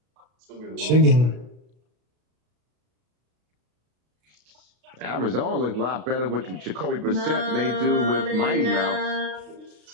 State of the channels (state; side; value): late; left; 33 ms